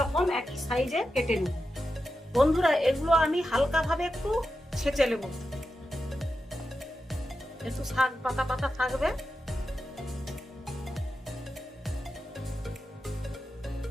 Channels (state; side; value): normal; both; correlation 0.90